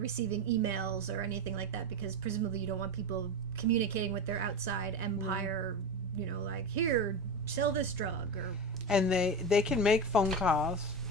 emails or anything like that because presumably you don't want people communicating with their outside empire, you know, like, here, sell this drug or... And they can make phone calls,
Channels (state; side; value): normal; both; correlation 0.21